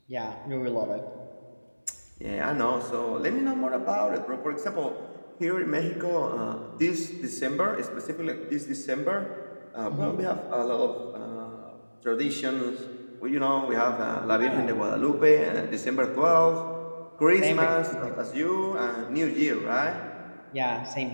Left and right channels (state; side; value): inverted; both; correlation -1.00